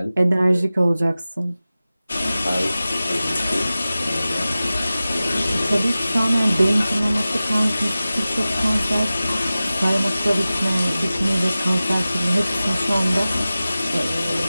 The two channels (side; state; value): both; inverted; correlation -0.96